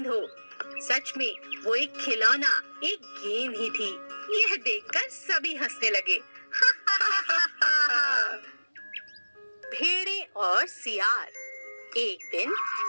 हो। सच में वो एक खिलौना, एक गेम ही थी। यह देखकर सभी हंसने लगे। भेड़े और सियार। एक दिन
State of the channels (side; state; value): both; inverted; correlation -1.00